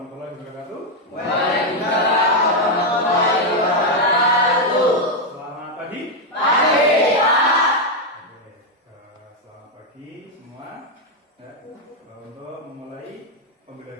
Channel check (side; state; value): both; normal; correlation 0.02